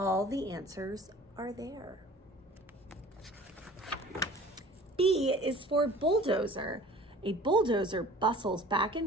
the answers are there. B is for bulldozer. A bulldozer bustles back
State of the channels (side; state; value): both; normal; correlation 0.46